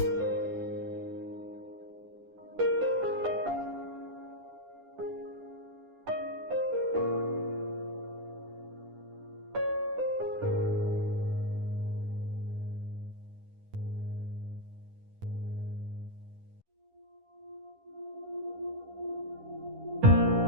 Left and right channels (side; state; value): left; late; 10 ms